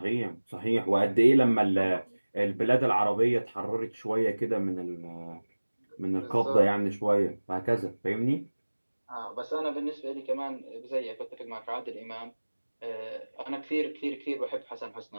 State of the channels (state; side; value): inverted; both; correlation -1.00